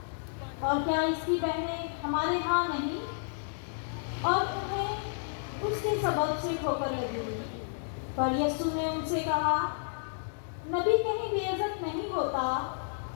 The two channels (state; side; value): silent; right; digital silence